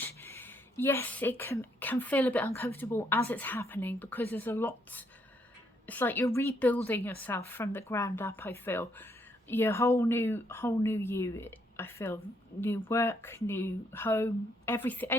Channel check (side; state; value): both; normal; correlation 0.73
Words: Yes, it can feel a bit uncomfortable as it's happening, because there's a lot. It's like you're rebuilding yourself from the ground up. I feel your whole new you. I feel new work, new home, everything,